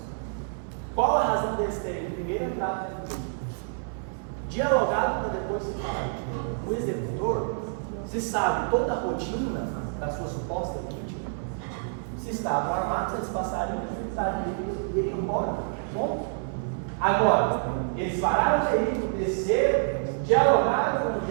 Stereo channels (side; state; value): left; silent; 60 dB below the other